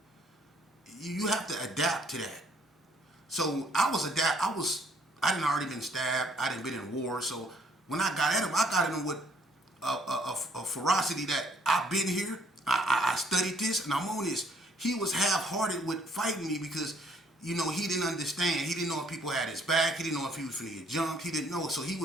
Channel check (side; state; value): both; normal; correlation 0.63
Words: You have to adapt to that. So I didn't already been stabbed. I didn't been in war. So when I got at him, I got at him with a ferocity that I've been here. I studied this and I'm on this. He was half-hearted with fighting me because, he didn't understand. He didn't know if people had his back. He didn't know if he was finna get jumped. He didn't know. So he